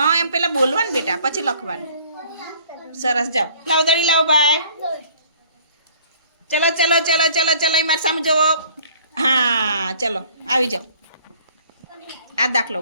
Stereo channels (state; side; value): inverted; both; correlation -0.55